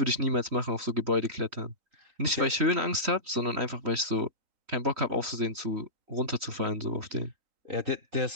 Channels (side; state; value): left; late; 3.1 ms